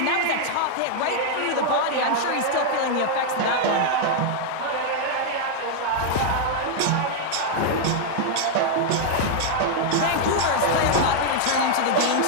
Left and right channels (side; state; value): both; different; correlation 0.00